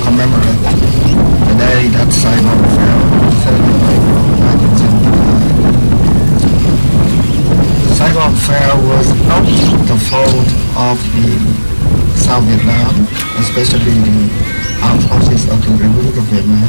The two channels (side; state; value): both; inverted; correlation -1.00